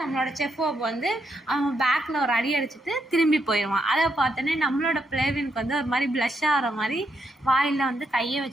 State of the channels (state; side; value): normal; both; correlation 0.79